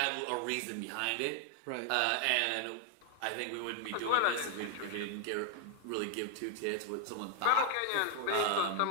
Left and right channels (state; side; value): different; both; correlation 0.01